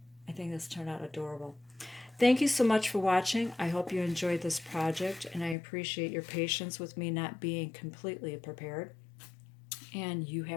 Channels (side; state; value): right; drops out; at 5.6 s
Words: I think this turned out adorable. Thank you so much for watching. I hope you enjoyed this project, and I appreciate your patience with me not being completely prepared. And you